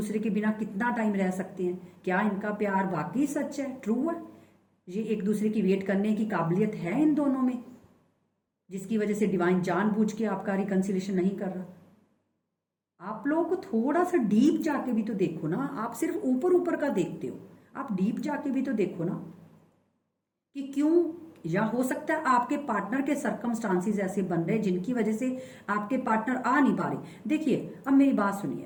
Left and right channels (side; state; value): both; identical; correlation 1.00